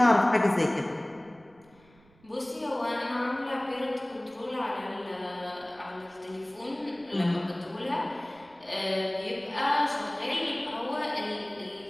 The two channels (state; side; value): noise; right; rumble, 29 dB below the sound